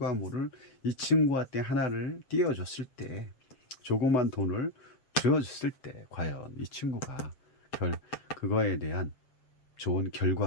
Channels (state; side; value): late; right; 7.6 ms